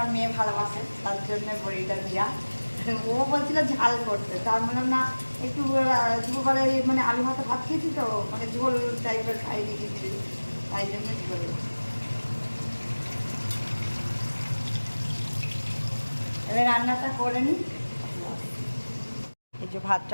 মেয়ে ভালোবাসে, তার জন্য বড়িটা দেওয়া। ও বলছিল ঝাল করতে, তার বললাম না একটু দুপুরবেলা মানে আলু ভাতে ভাত খেয়েছি তো, মানে ঝোল টাইপের খাই দিয়েছি, তাই জন্য ঝোল। এবার রান্নাটা করে নিই। এই যে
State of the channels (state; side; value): inverted; both; correlation -1.00